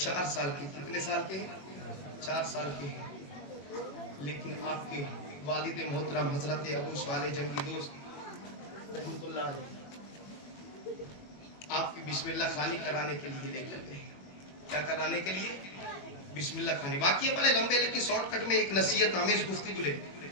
साल के, कितने साल के हैं? 4 साल के हैं। लेकिन आपके वालिद मोहतरम हजरत अबू साले जंगी दोस्त रहमतुल्लाह अलैह आपकी बिस्मिल्लाह खानी कराने के लिए लेकर गए। क्या कराने के लिए? बिस्मिल्लाह खानी। वाकया बड़े लंबे, लेकिन शॉर्टकट में एक नसीहत आमेज गुफ्तगू ले।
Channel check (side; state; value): right; late; 21 ms